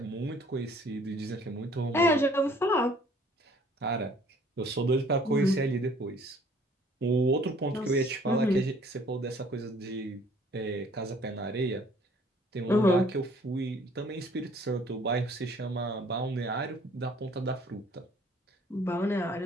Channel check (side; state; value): both; normal; correlation 0.57